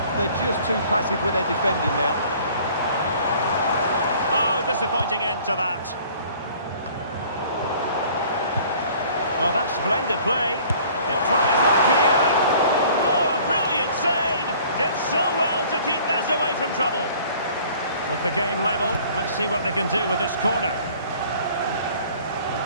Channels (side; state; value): both; inverted; correlation -0.52